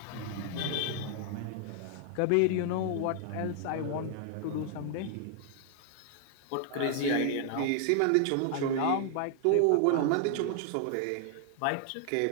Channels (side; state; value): both; different; correlation 0.00